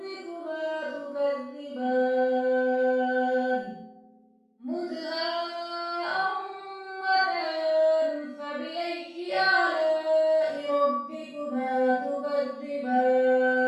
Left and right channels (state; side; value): identical; both; correlation 1.00